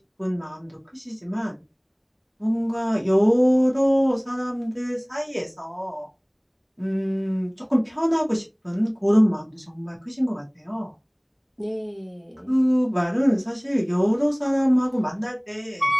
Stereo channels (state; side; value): identical; both; correlation 1.00